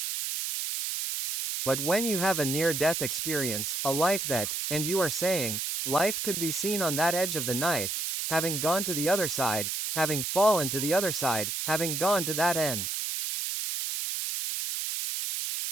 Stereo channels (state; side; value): noise; right; hiss, 2 dB below the sound